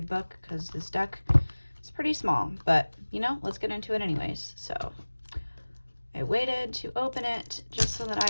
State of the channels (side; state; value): both; inverted; correlation -1.00